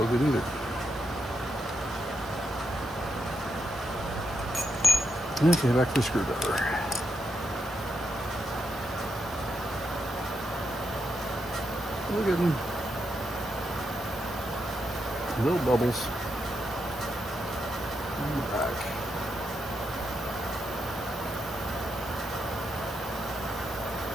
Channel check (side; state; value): both; normal; correlation 0.83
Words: good either. Okay, back to the screwdriver. We're getting little bubbles on the back.